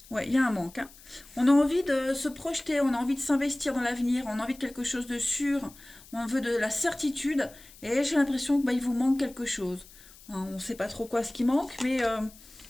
Ouais, il y a un manque. Hein. On a envie de se projeter, on a envie de s'investir dans l'avenir, on a envie de quelque chose de sûr, on veut de la certitude, et j'ai l'impression que il vous manque quelque chose. Hein, on ne sait pas trop quoi ce qui manque, mais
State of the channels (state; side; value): noise; left; hiss, 22 dB below the sound